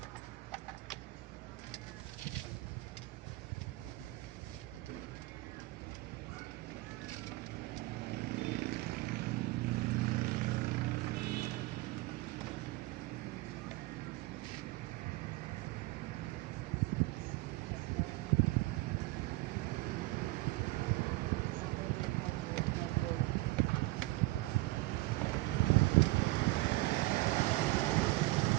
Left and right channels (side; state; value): left; quieter; 20.6 dB